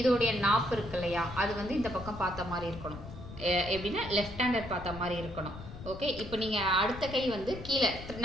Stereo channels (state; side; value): noise; left; rumble, 12 dB below the sound